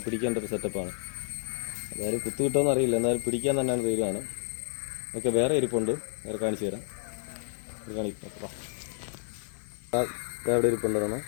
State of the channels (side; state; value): right; silent; 55 dB below the other